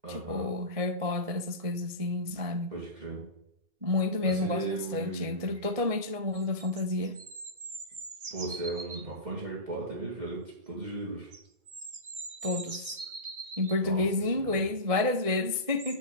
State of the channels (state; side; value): late; left; 1.7 ms